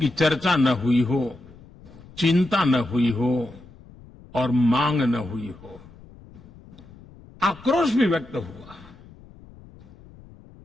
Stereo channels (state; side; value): noise; left; rumble, 22 dB below the sound